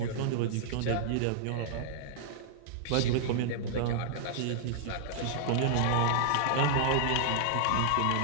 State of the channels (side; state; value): both; different; correlation -0.01